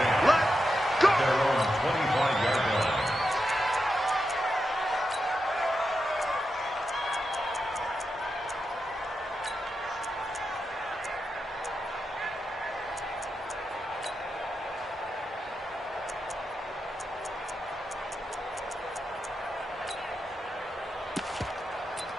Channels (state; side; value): normal; both; correlation 0.87